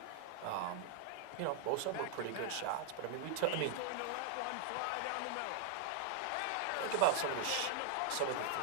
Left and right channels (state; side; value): different; both; correlation 0.00